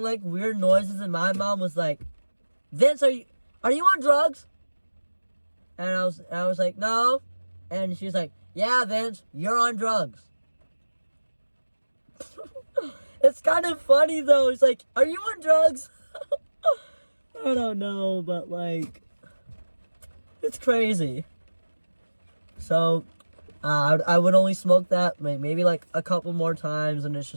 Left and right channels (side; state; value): both; inverted; correlation -1.00